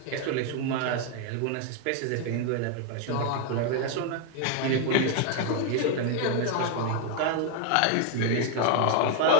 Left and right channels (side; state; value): both; different; correlation 0.01